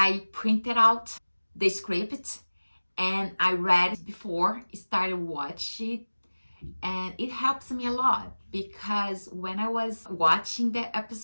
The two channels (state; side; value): inverted; both; correlation -1.00